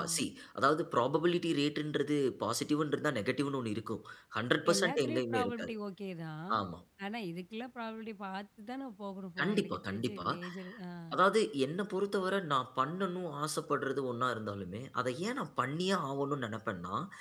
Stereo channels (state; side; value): identical; both; correlation 1.00